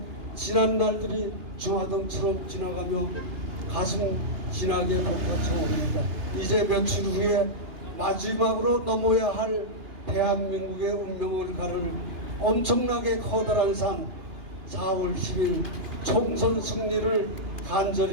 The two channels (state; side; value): late; left; 2.9 ms